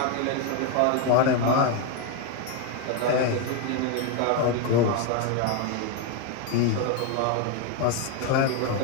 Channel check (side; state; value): both; different; correlation 0.02